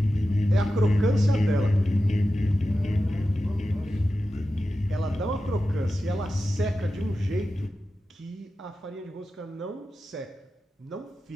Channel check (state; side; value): normal; both; correlation 0.92